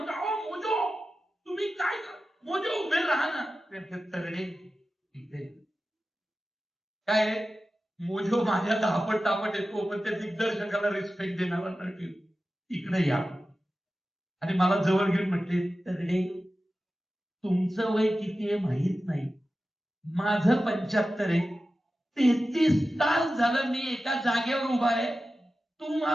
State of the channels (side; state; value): both; normal; correlation 0.94